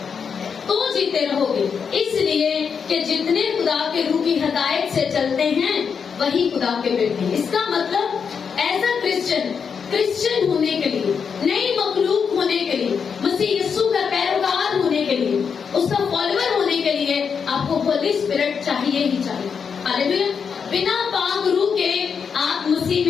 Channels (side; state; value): right; quieter; 6.4 dB